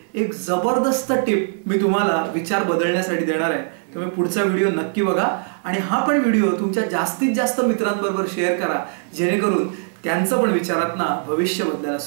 एक जबरदस्त टिप मी तुम्हाला विचार बदलण्यासाठी देणार आहे. तुम्ही पुढचा व्हिडिओ नक्की बघा आणि हा पण व्हिडिओ तुमच्या जास्तीत जास्त मित्रांबरोबर शेअर करा, जेणेकरून त्यांचं पण विचारातनं भविष्य बदलायला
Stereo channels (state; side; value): silent; left; 65 dB below the other